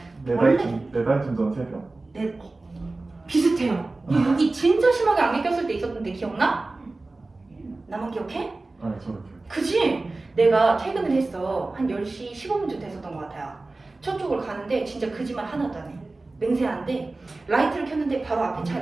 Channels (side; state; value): left; quieter; 3.2 dB